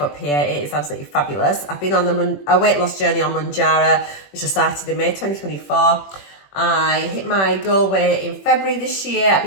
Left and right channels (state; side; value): late; right; 21 ms